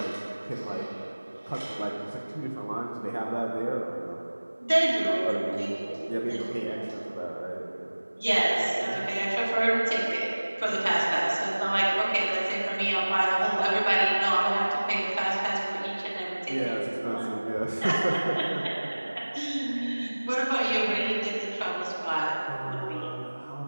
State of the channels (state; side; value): inverted; both; correlation -1.00